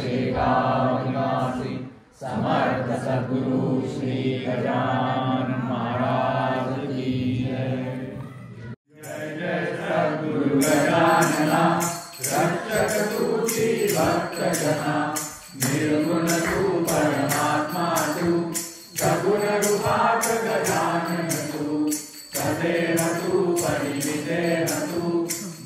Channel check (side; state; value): both; identical; correlation 1.00